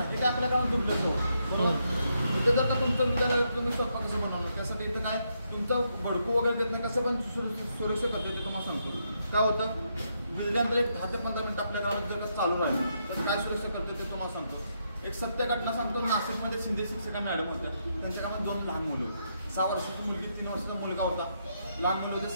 हे काय आपल्या कामात दुबलं बरोबर. इथं जर का तुमचं विद्यालय तुम्ही स्वतः कसं बनवणार त्यासाठी इथं काय तुमचं भडकू वगैरे देत नाही, कसं पण सुरक्षित करतो ते तुम्हाला सांगतो. काय होतं विजल्यानंतर एक 10 ते 15 मिनिट आपल्या गावात जर चालू राहिलं तर काय सुरक्षित करतो ते तुम्हाला सांगतो. एक सत्य घटना सांगतो. नाशिकमध्ये शिंदे शिक्षिका मॅडम होत्या, त्यांच्या कामात 2 लहान मुलं, 6 वर्षाची मुलगी, 3 वर्षाचा मुलगा होता. लहान मुलं होते,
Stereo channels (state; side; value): inverted; both; correlation -0.79